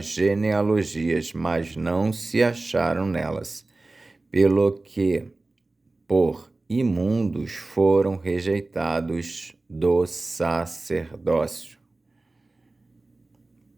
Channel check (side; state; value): left; quieter; 3.2 dB